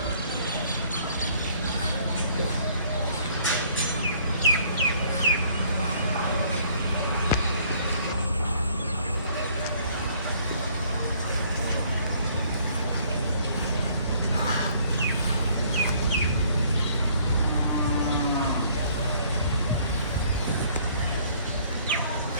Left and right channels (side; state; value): both; inverted; correlation -0.60